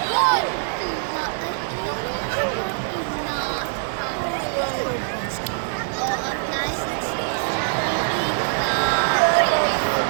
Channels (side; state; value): left; silent; digital silence